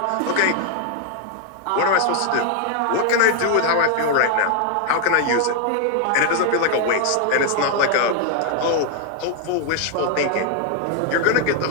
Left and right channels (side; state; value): both; different; correlation 0.00